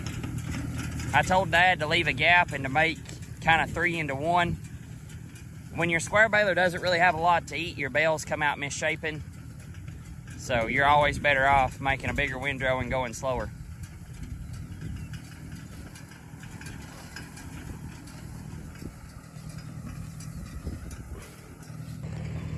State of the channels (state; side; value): identical; both; correlation 1.00